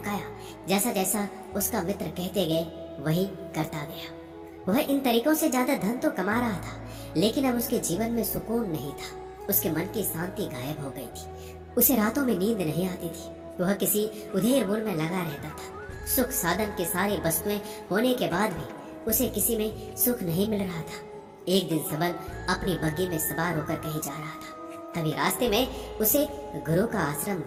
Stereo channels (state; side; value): identical; both; correlation 1.00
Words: जैसा जैसा उसका मित्र कहते गए वही करता गया। वह इन तरीकों से ज्यादा धन तो कमा रहा था, लेकिन अब उसके जीवन में सुकून नहीं था। उसके मन की शांति गायब हो गई थी। उसे रातों में नींद नहीं आती थी। वह किसी उधेड़ बुन में लगा रहता था। सुख साधन की सारी वस्तुएं होने के बाद भी उसे किसी में सुख नहीं मिल रहा था। एक दिन सवल अपनी बग्गी में सवार होकर कहीं जा रहा था। तभी रास्ते में उसे गुरु का आश्रम